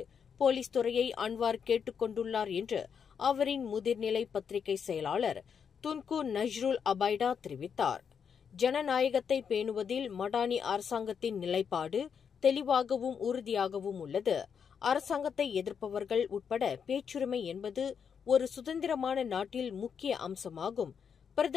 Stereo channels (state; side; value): quieter; right; 7.0 dB